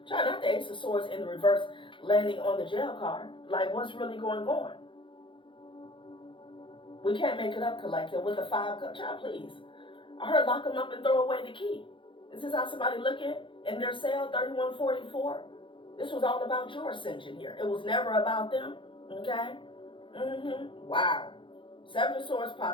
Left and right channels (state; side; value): late; right; 0.24 ms